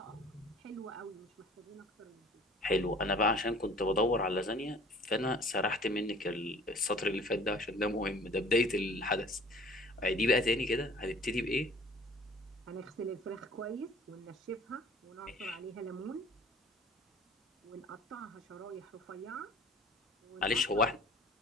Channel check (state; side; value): normal; both; correlation 0.49